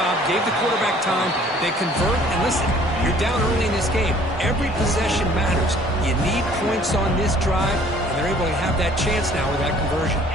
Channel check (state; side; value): normal; both; correlation 0.55